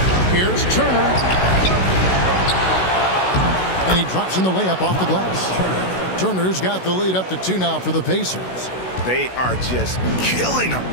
Here's Turner. And he drops in the layup off the glass. Turner's got the lead up to 2 now for the Pacers. They are just killing them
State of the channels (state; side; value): late; right; 16 ms